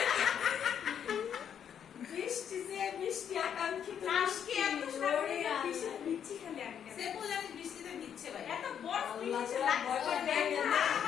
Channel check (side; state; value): right; quieter; 8.6 dB